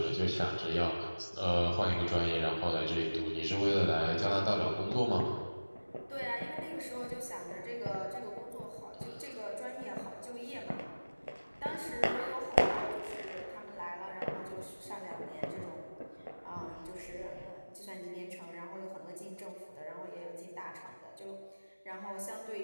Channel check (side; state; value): both; inverted; correlation -1.00